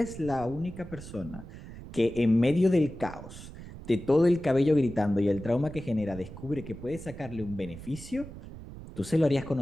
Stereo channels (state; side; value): noise; right; rumble, 14 dB below the sound